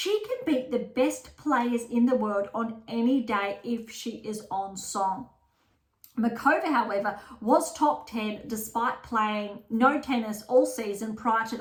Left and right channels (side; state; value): both; identical; correlation 1.00